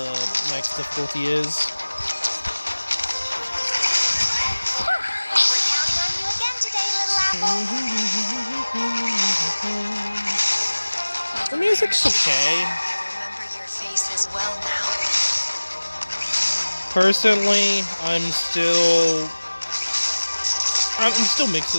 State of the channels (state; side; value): inverted; both; correlation -1.00